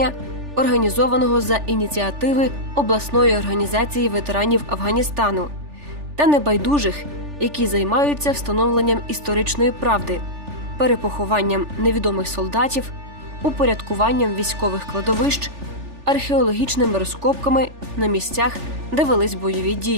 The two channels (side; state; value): left; late; 3.4 ms